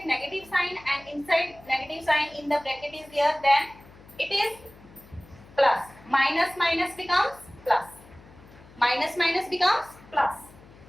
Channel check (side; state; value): left; noise; hum, 23 dB below the sound